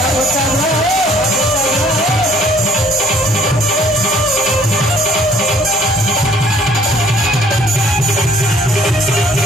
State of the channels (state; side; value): normal; both; correlation 0.60